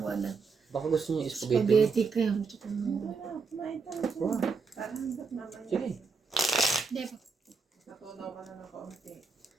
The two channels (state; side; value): quieter; left; 4.9 dB